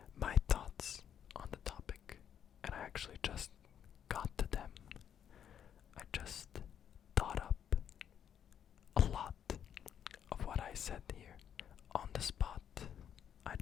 my thoughts on the topic. And I actually just got to them. I just thought up a lot of what I said here on the spot. I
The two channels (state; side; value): quieter; right; 9.0 dB